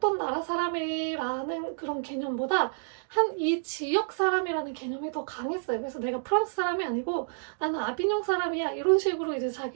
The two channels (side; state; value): left; silent; digital silence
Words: 나라 사람이라는 그런 개념보다 한 이 지역 사람이라는 개념이 더 강했어요. 그래서 내가 프랑스 사람이 아니고 나는 아비뇽 사람이야, 이런 식으로 이제